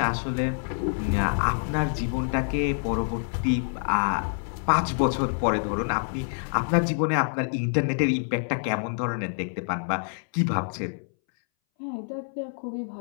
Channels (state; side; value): silent; right; 60 dB below the other